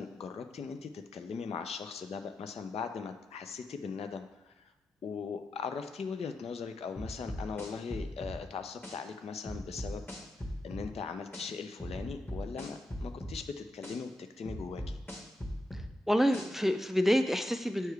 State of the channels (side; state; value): both; normal; correlation 0.88